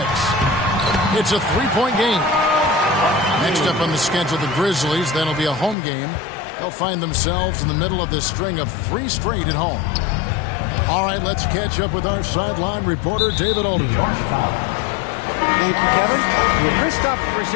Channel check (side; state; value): right; drops out; at 5.8 s